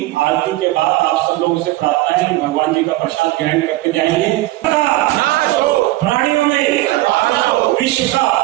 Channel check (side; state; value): left; quieter; 17.7 dB